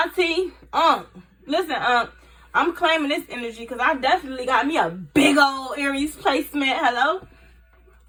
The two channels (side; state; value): both; identical; correlation 1.00